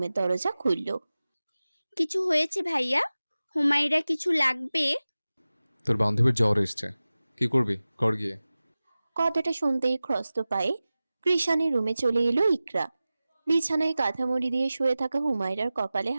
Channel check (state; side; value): inverted; both; correlation -0.97